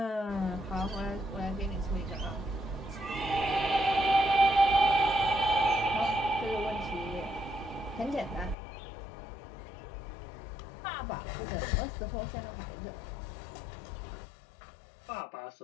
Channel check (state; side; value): drops out; right; at 8.6 s